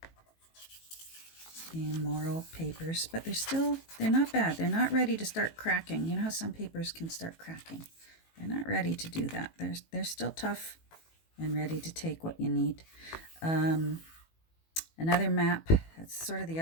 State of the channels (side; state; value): right; late; 18 ms